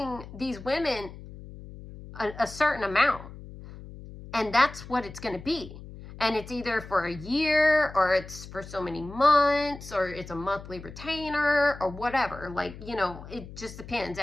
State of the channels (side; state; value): left; noise; hum, 15 dB below the sound